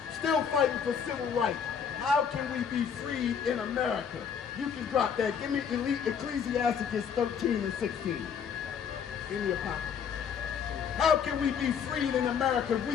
Still fighting for civil rights. How can we be freed in America? You can drop that. Give me Ecclesiastes 13 and 16. Give me a copy. How can we be freed in America if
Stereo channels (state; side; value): quieter; right; 7.3 dB